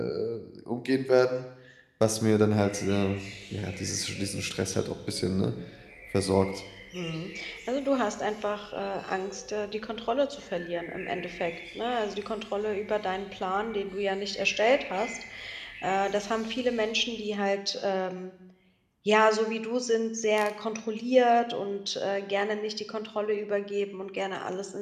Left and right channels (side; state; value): both; identical; correlation 1.00